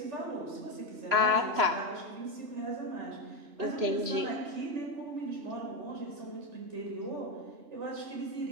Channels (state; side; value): late; left; 3.0 ms